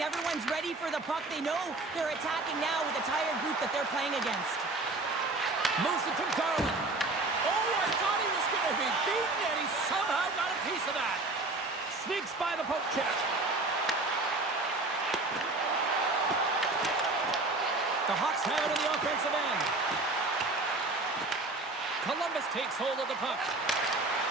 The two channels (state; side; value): quieter; left; 3.2 dB